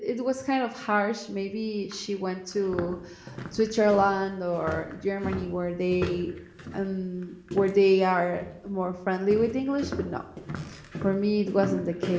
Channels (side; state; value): both; identical; correlation 1.00